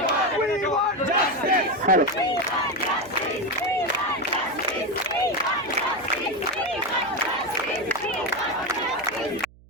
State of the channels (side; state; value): right; noise; hum, 25 dB below the sound